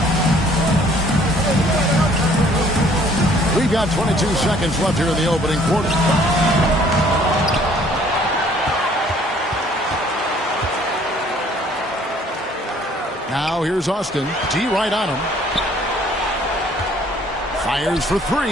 We've got 22 seconds left here in the opening quarter. Now here's Austin. D right on him. Fires for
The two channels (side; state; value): both; normal; correlation 0.58